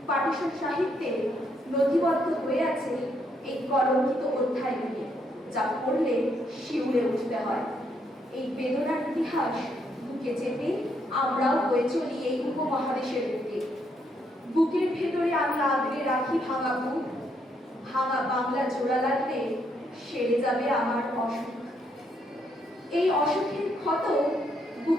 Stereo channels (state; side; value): normal; both; correlation 0.74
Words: পাটিশন সাহিত্যে নথিবদ্ধ হয়ে আছে এই কলঙ্কিত অধ্যায়গুলি, যা পড়লে শিউরে উঠতে হয়। এই বেদনার ইতিহাস বুকে চেপে আমরাও বয়ে চলি এই উপমহাদেশের বুকে। বুকের ভেতরে আমি আগলে রাখি ভাঙা বুক, ভাঙা বাংলা জোড়া লাগলে সেরে যাবে আমার অসুখ। এই অসুখের ক্ষত